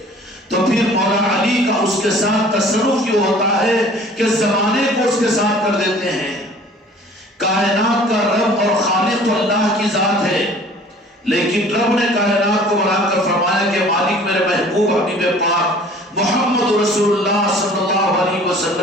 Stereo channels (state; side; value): normal; both; correlation 0.50